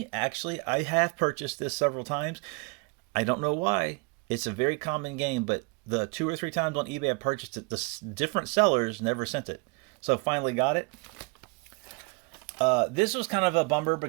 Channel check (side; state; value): left; quieter; 31.1 dB